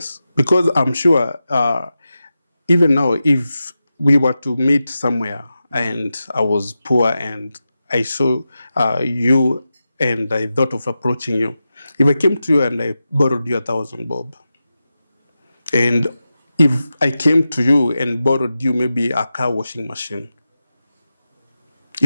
Because I'm sure even now, if we were to meet somewhere and I was poor and I saw you and I thought of approaching you, if I came to you and I borrowed you 1,000 bob, and if I came to you and borrowed you maybe a car washing machine,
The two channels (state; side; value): inverted; both; correlation -0.92